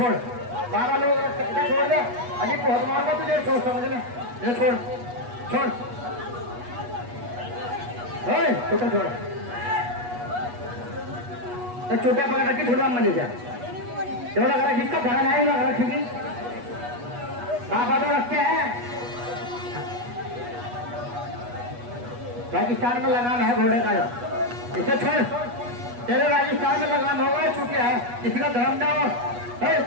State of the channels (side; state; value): left; late; 8.3 ms